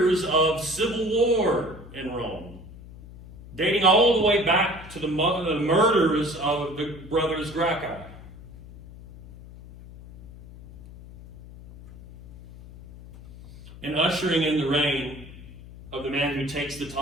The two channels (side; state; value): left; noise; hum, 17 dB below the sound